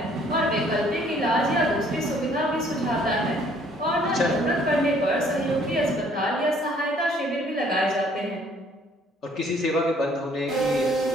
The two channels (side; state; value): both; normal; correlation 0.61